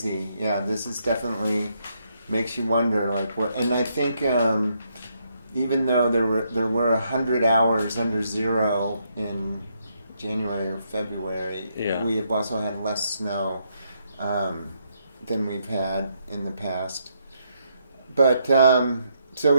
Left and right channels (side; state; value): both; inverted; correlation -0.76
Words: Yeah, this is definitely makes you wonder what. And I think even though there were 100 hours under zero in January or February. Yeah. We have also had less snow than we've had in the past. But so